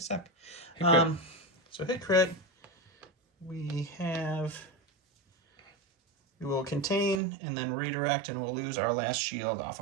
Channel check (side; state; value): left; drops out; at 7.2 s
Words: Hit crit. So hit crit. We will contain and then redirect, and we'll lose our last shield off